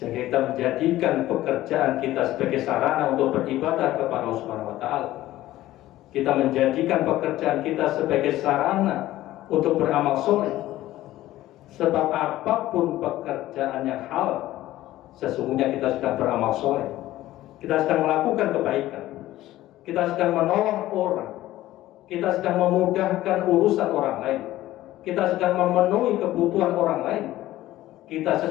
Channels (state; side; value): quieter; right; 15.3 dB